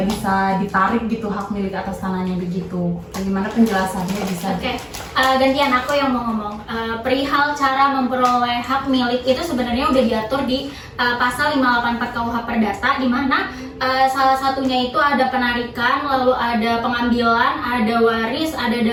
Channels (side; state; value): both; identical; correlation 1.00